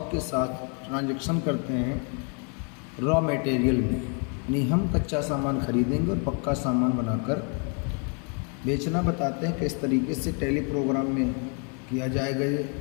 के साथ ट्रांजैक्शन करते हैं रॉ मटेरियल में, यानी हम कच्चा सामान खरीदेंगे और पक्का सामान बनाकर बेचना बताते हैं किस तरीके से टैली प्रोग्राम में किया जाएगा ये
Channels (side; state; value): right; quieter; 38.7 dB